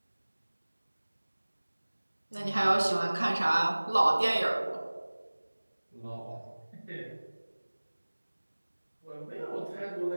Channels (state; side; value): inverted; both; correlation -1.00